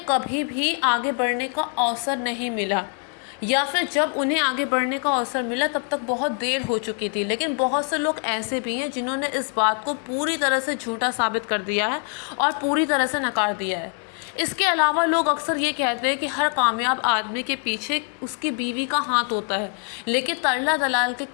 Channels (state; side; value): quieter; right; 39.3 dB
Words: कभी भी आगे बढ़ने का अवसर नहीं मिला, या फिर जब उन्हें आगे बढ़ने का अवसर मिला तब तक बहुत देर हो चुकी थी। लेकिन बहुत से लोग ऐसे भी हैं जिन्होंने इस बात को पूरी तरह से झूठा साबित कर दिया है और पूरी तरह से नकार दिया है। इसके अलावा लोग अक्सर ये कहते हैं कि हर कामयाब आदमी के पीछे उसकी बीवी का हाथ होता है, लेकिन तरला दलाल के